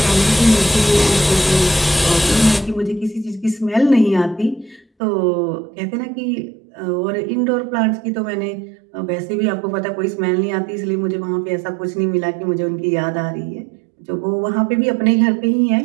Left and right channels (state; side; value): drops out; left; at 4.9 s